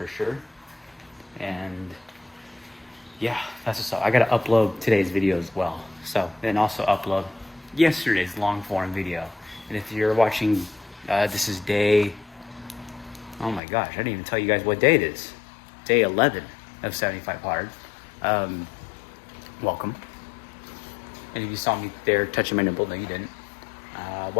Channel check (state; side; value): drops out; right; at 13.6 s